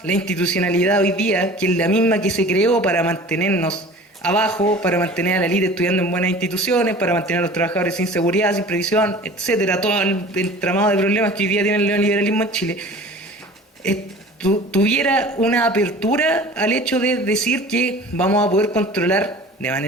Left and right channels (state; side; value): normal; both; correlation 0.42